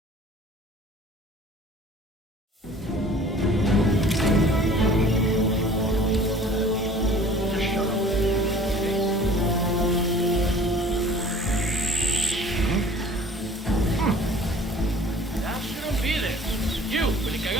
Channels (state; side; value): normal; both; correlation 0.49